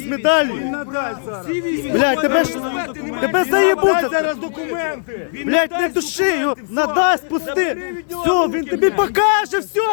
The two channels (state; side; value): silent; right; digital silence